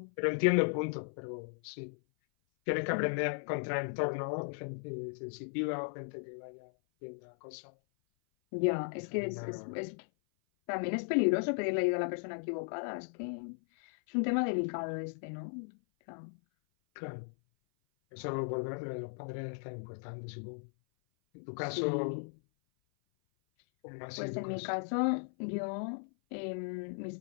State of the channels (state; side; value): silent; right; 54 dB below the other